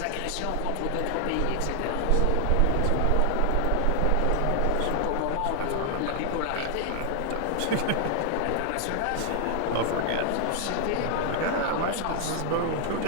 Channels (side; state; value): both; different; correlation 0.00